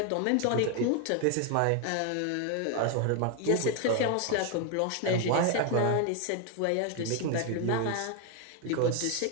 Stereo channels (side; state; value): both; different; correlation 0.01